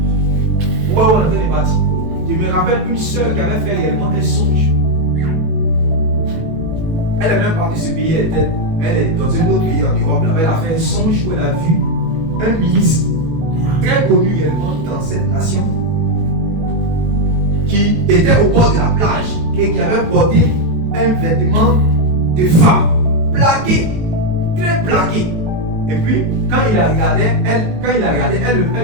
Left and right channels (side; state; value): left; late; 18 ms